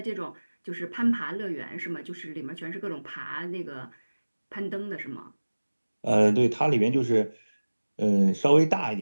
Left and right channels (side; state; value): both; inverted; correlation -1.00